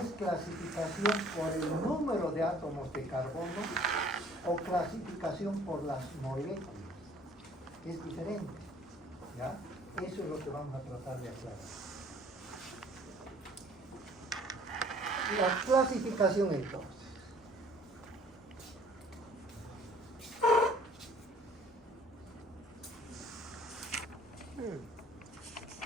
clasificación por el número de átomos de carbono o clasificación por las moléculas, que es diferente, ¿ya? Eso es lo que vamos a tratar de aclarar. La clasificación entonces.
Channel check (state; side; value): normal; both; correlation 0.55